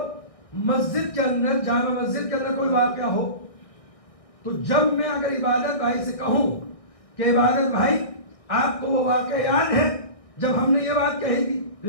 مسجد کے اندر جامع مسجد کے اندر کوئی واقعہ ہو تو جب میں اگر عبادت بھائی سے کہوں کہ عبادت بھائی آپ کو وہ واقعہ یاد ہے جب ہم نے یہ بات کہی تھی تو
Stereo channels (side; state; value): right; late; 1.6 ms